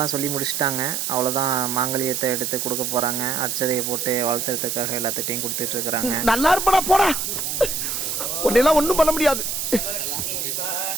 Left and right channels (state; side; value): noise; right; hiss, 2 dB below the sound